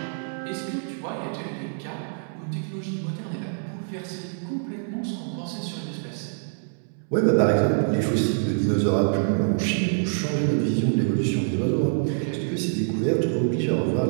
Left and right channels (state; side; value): silent; left; 61 dB below the other